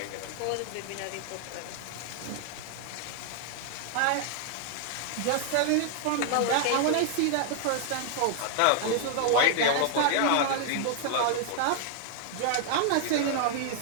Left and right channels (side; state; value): both; different; correlation 0.00